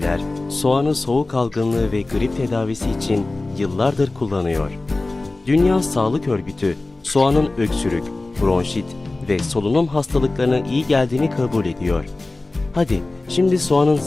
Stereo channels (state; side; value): quieter; right; 3.1 dB